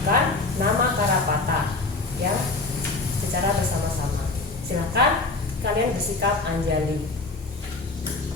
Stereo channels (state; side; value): quieter; right; 3.4 dB